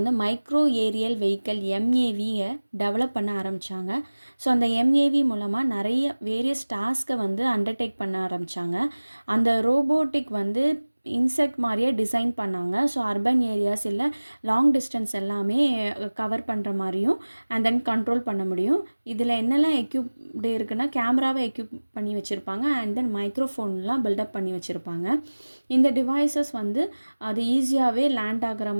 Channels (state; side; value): inverted; both; correlation -1.00